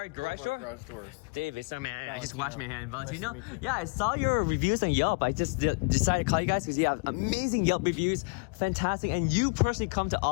Garage Doors. Dave, it's man. I just washed my hand. Valentino. Yeah, I saw your reviews on Yelp. I just decided to call you guys because you have amazing Yelp reviews, fantastic, and you personally come to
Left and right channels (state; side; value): quieter; right; 33.0 dB